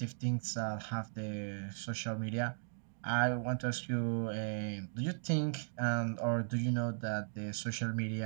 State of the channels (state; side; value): silent; left; digital silence